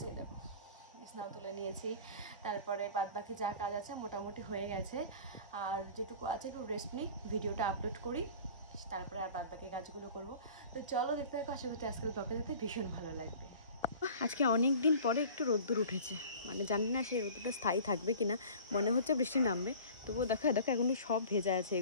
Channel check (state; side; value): inverted; both; correlation -0.43